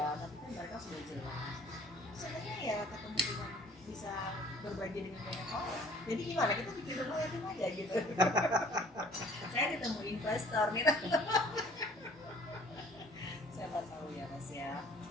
tapi kan mereka sudah jelas. Sebenarnya ya ketemu dengan bisa berbagi dengan banyak orang. Jadi gimana, kita bikin rumah yatim aja gitu. Saya ketemu investor nih. Siapa tahu ya Mas ya.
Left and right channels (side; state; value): both; normal; correlation 0.54